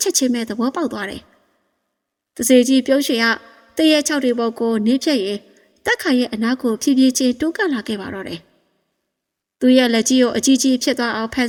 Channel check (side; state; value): both; identical; correlation 1.00